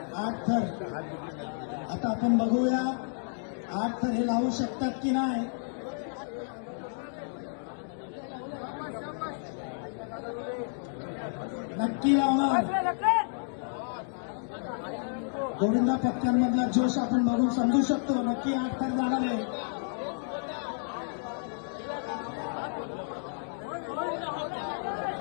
8 थर. आता आपण बघूया 8 थर हे लावू शकतात की नाही. नक्की लावणार. गोविंदा पथकांमधला जोश आपण बघून समजू शकतो. नक्की 8 थर जाणार आहे.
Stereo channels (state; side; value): silent; right; digital silence